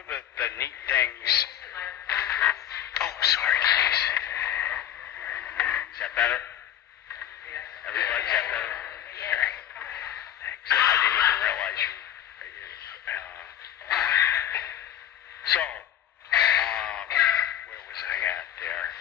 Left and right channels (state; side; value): quieter; right; 11.1 dB